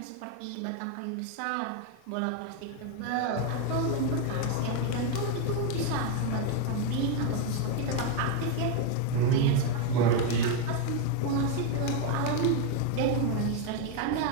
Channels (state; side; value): different; both; correlation 0.02